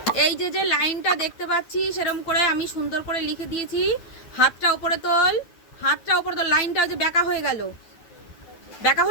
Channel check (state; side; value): late; right; 9.1 ms